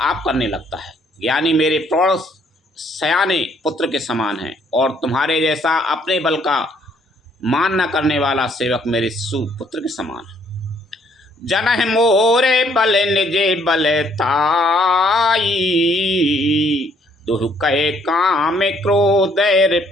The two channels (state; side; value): normal; both; correlation 0.66